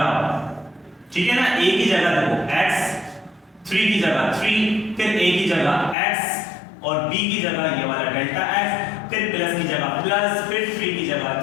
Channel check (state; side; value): drops out; right; at 6.0 s